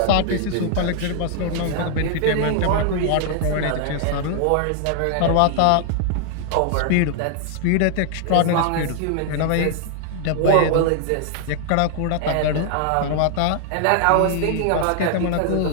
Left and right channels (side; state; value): both; different; correlation 0.00